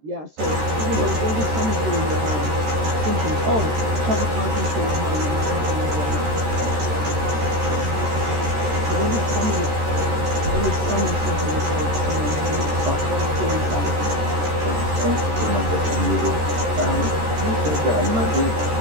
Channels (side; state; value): left; late; 13 ms